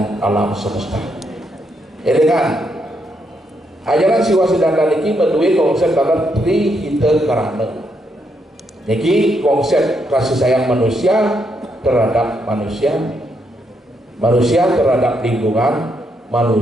alam semesta. Ini kan ajaran siwa siddhanta niki menduwe konsep kata trihita karana. Niki konsep kasih sayang manusia terhadap manusia, manusia terhadap lingkungan,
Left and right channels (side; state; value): both; normal; correlation 0.78